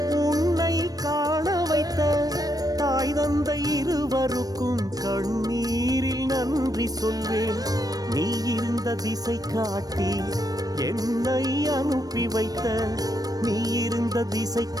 உன்னை காண வைத்த தாய் தந்தை இருவருக்கும் கண்ணீரில் நன்றி சொல்வேன். நீ இருந்த திசை காட்டி என்னை அனுப்பி வைத்த, நீ இருந்த திசை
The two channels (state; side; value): late; left; 0.18 ms